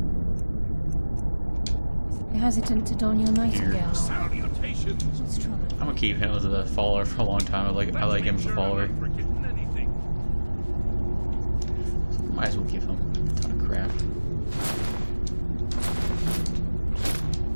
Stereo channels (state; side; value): inverted; both; correlation -1.00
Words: You're hesitant to don your Nightingale armor. What's troubling you? I'm gonna keep him as a follower for a long time. I like him as a follower. So might as well give him a ton of crap.